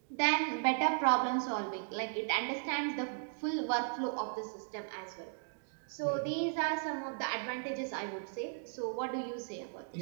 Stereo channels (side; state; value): left; silent; digital silence